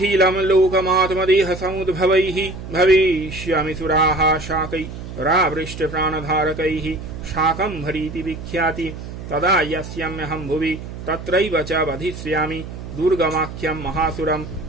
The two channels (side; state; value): right; noise; hum, 10 dB below the sound